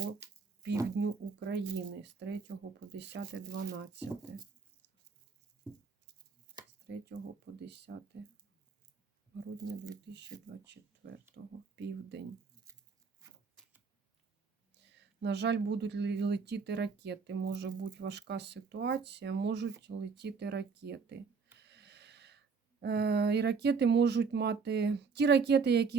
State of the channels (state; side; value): quieter; left; 5.2 dB